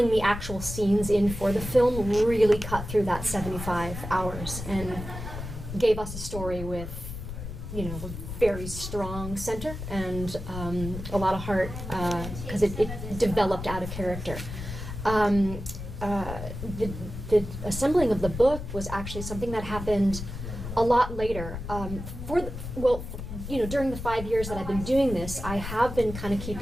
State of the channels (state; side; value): noise; left; rumble, 8 dB below the sound